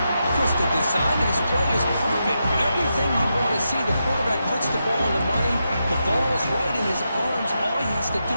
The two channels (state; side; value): inverted; both; correlation -0.86